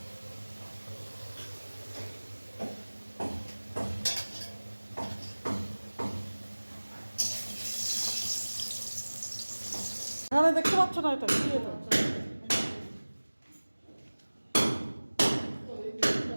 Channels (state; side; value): inverted; both; correlation -1.00